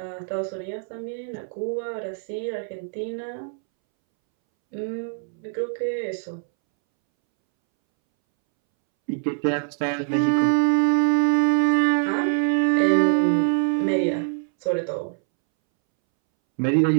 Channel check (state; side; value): silent; left; 63 dB below the other